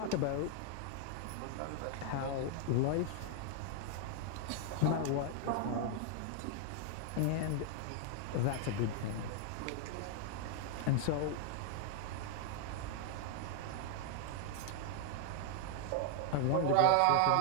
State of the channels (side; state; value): both; different; correlation 0.00